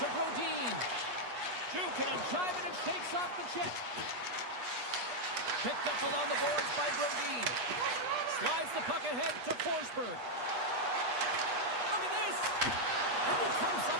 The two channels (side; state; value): left; late; 8.3 ms